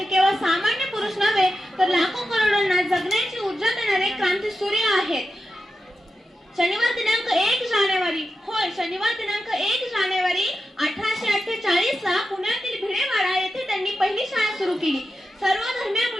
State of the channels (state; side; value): normal; both; correlation 0.90